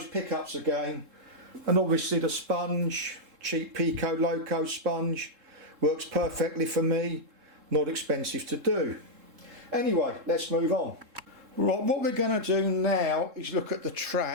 pickups again. And obviously the sponge, cheap Pico loco sponge, works perfectly for me, not expensive to do. Anyway, let's move on. Right, what we're going to do now is look at the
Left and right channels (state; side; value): late; left; 3.7 ms